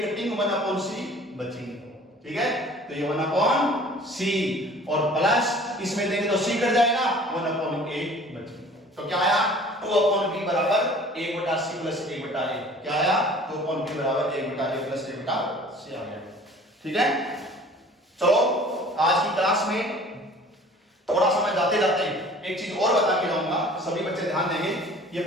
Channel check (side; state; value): both; normal; correlation 0.48